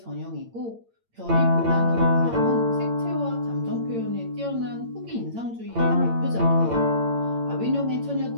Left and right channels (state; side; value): late; left; 8.8 ms